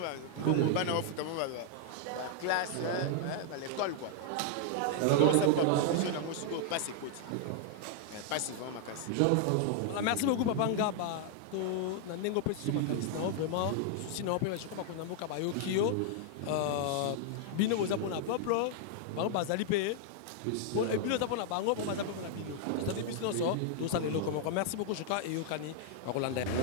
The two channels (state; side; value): different; both; correlation 0.00